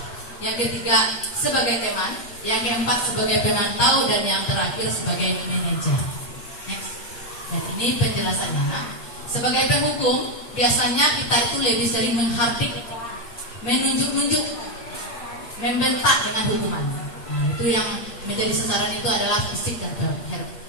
yang ketiga sebagai teman, yang keempat sebagai pemantau, dan yang terakhir sebagai manajer. Next. Dan ini penjelasannya. Sebagai penghukum, biasanya kita itu lebih sering menghardik, menunjuk-nunjuk, membentak dengan hukuman. Nah, itu yang menjadi sasaran itu adalah fisik dan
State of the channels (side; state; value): right; late; 8.5 ms